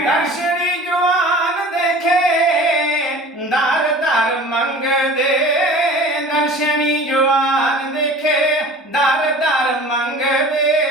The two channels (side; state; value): both; normal; correlation 0.42